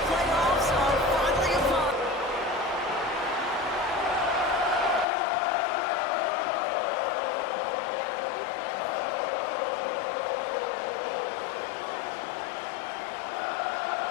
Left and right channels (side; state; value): right; drops out; at 5.1 s